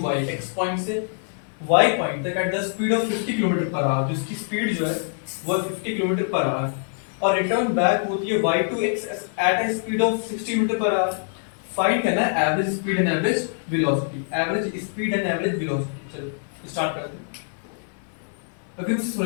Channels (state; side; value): silent; right; 58 dB below the other